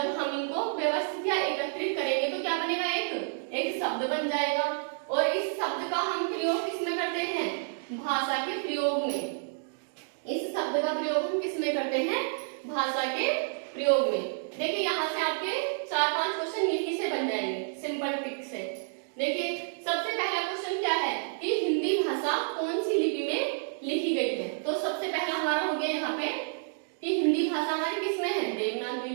हम इनको व्यवस्थित या एकत्रित करेंगे तो क्या बनेगा? एक शब्द बन जाएगा। और इस शब्द का हम प्रयोग किसमें करते हैं? भाषा के प्रयोग में। इस शब्द का प्रयोग हम किसमें करते हैं? भाषा के प्रयोग में। देखिए यहाँ से आपके 4-5 क्वेश्चन यही से बन जाएंगे, सिंपल ट्रिक से। देखिए सबसे पहला क्वेश्चन क्या है कि हिंदी भाषा कौन सी लिपि में लिखी गई है? तो सबसे पहला हमारा हो गया यहाँ पे कि हिंदी भाषा हमारी किसमें है? देवनागरी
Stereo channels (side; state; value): left; silent; digital silence